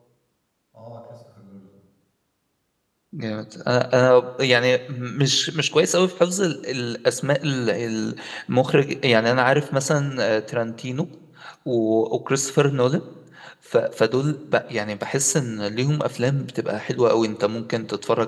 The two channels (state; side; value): identical; both; correlation 1.00